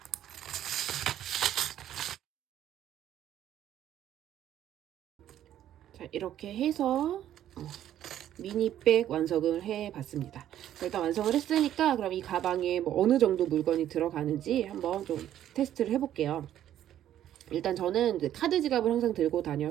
자, 이렇게 해서 미니백 완성을 해봤습니다. 일단 완성을 했으니까 그럼 이 가방에 뭐 어느 정도 물건이 들어가는지 한번 좀 테스트를 해볼게요. 일단 저는 이제 카드 지갑을 항상 들고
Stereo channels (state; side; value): quieter; left; 11.5 dB